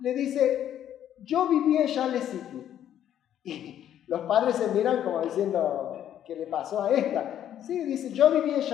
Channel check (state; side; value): quieter; right; 10.7 dB